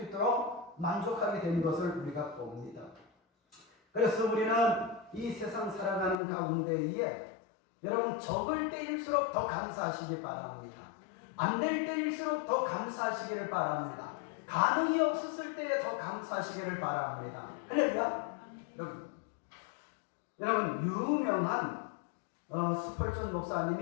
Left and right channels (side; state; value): right; drops out; at 6.2 s